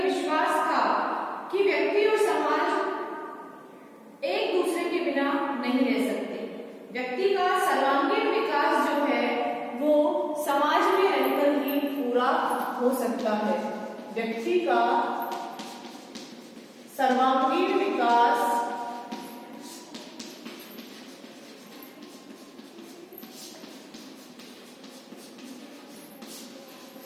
विश्वास था कि व्यक्ति और समाज एक दूसरे के बिना नहीं रह सकते। व्यक्ति का सर्वांगीण विकास जो है वो समाज में रहकर ही पूरा हो सकता है। व्यक्ति का सर्वांगीण विकास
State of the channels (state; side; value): identical; both; correlation 1.00